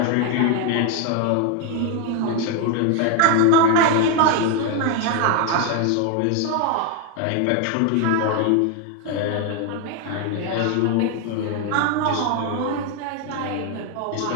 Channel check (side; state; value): both; different; correlation 0.01